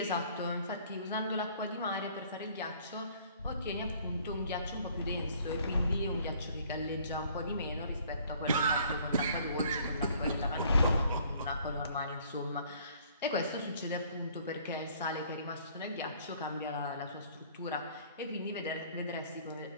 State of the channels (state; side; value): inverted; both; correlation -0.58